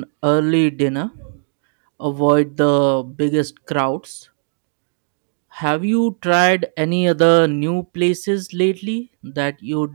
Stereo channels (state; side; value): silent; left; 66 dB below the other